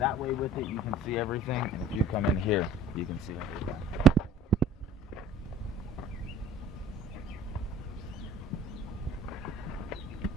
way with it, you can see everything. And if you come in here, you can see everything.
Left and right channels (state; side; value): normal; both; correlation 0.49